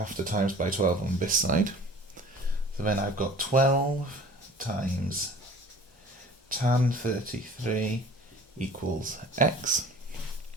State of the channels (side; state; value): both; normal; correlation 0.45